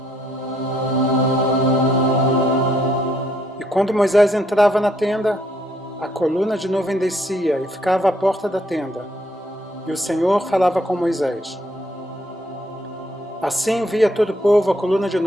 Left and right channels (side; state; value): both; normal; correlation 0.70